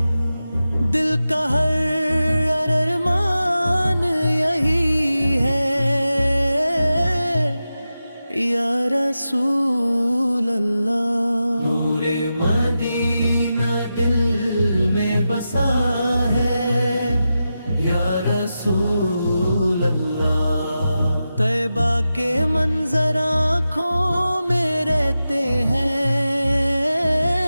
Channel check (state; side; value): inverted; both; correlation -0.91